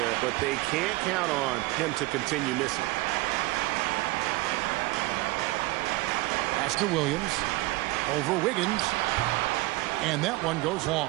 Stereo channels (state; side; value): quieter; left; 20.8 dB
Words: but they can't count on him to continue missing. Pass to Williams. Over Wiggins. And that one goes long.